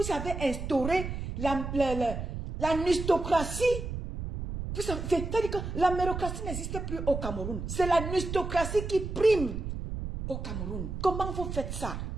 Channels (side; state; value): right; noise; rumble, 6 dB below the sound